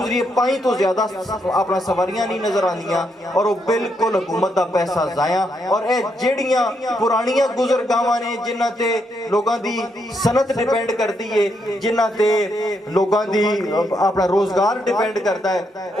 5 ਤੋਂ ਜ਼ਿਆਦਾ ਆਪਣਾ ਸਵਾਰੀਆਂ ਨਹੀਂ ਨਜ਼ਰ ਆਉਂਦੀਆਂ ਔਰ ਉਹ ਬਿਲਕੁਲ ਹਕੂਮਤ ਦਾ ਪੈਸਾ ਜ਼ਾਇਆ। ਔਰ ਇਹ ਜਿਹੜੀਆਂ ਪੁਰਾਣੀਆਂ ਗੁਜ਼ਰਗਾਵਾਂ ਨੇ ਜਿਨ੍ਹਾਂ ਤੇ ਲੋਕਾਂ ਦੀ ਸਨਅਤ ਡਿਪੈਂਡ ਕਰਦੀ ਏ, ਜਿਨ੍ਹਾਂ ਤੇ ਲੋਕਾਂ ਦੀ ਆਪਣਾ ਰੋਜ਼ਗਾਰ ਡਿਪੈਂਡ ਕਰਦਾ ਹੈ,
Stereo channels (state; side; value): normal; both; correlation 0.78